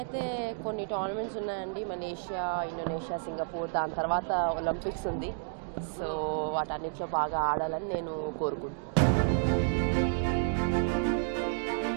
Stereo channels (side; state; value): left; silent; digital silence